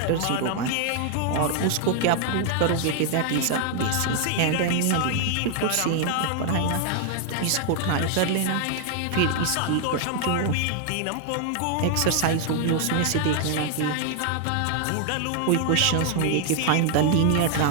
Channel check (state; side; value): different; both; correlation 0.00